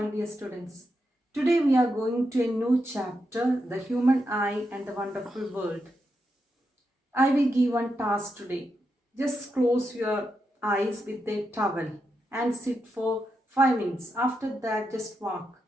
dear students. Today we are going to a new chapter, The Human Eye and the Wonderful World. I will give one task today. Just close your eyes with a towel and sit for 5 minutes. After that, just walk.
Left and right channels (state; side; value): normal; both; correlation 0.85